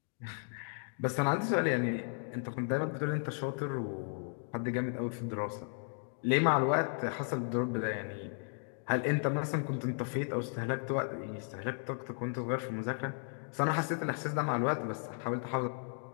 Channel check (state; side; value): silent; right; 54 dB below the other